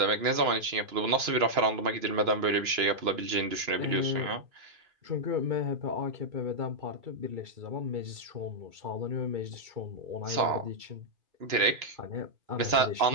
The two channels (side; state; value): left; late; 2.9 ms